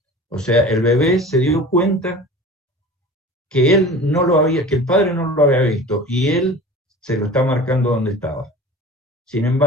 O sea, el bebé se dio cuenta que que el padre no lo había visto y él se lo está marcando donde estaba. Sin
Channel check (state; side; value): normal; both; correlation 0.38